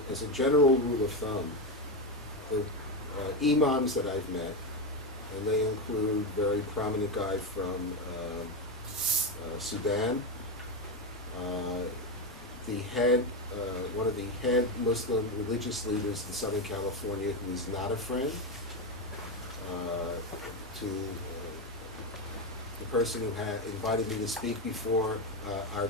a general rule of thumb, the imams that I've met, and they include very prominent guy from Sudan, one of the head Muslim religious leaders in Southern California, who is not a friend to the person who had invited me to speak before our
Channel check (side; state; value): both; normal; correlation 0.12